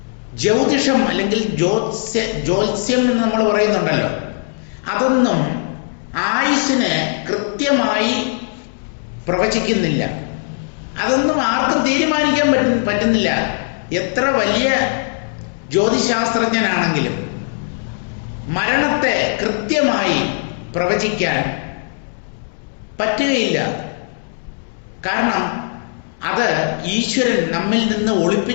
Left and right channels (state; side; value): silent; right; 67 dB below the other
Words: ജ്യോതിഷം അല്ലെങ്കിൽ ജ്യോത്സ്യം എന്ന് നമ്മൾ പറയുന്നുണ്ടല്ലോ, അതൊന്നും ആയുസ്സിനെ കൃത്യമായി പ്രവചിക്കുന്നില്ല. അതൊന്നും ആർക്കും തീരുമാനിക്കാൻ പറ്റുന്നില്ല. എത്ര വലിയ ജ്യോതിശാസ്ത്രജ്ഞനാണെങ്കിലും മരണത്തെ കൃത്യമായി പ്രവചിക്കാൻ പറ്റുകയില്ല. കാരണം അത് ഈശ്വരൻ നമ്മിൽ നിന്ന്